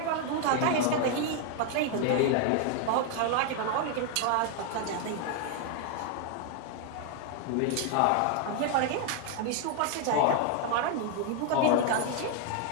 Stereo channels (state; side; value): different; both; correlation 0.00